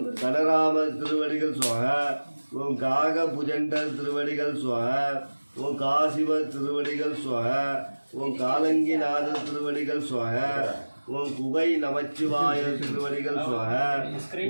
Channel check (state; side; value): inverted; both; correlation -1.00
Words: கனராமர் திருவடிகள் சுவாகா. ஓம் காக புஜண்டர் திருவடிகள் சுவாகா. ஓம் காசிவர் திருவடிகள் சுவாகா. ஓம் காலங்கிநாதர் திருவடிகள் சுவாகா. ஓம் குகை நமச்சிவாய திருவடிகள் சுவாகா.